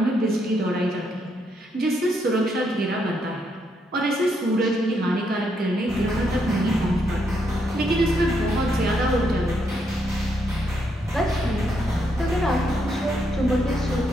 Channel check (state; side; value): normal; both; correlation 0.77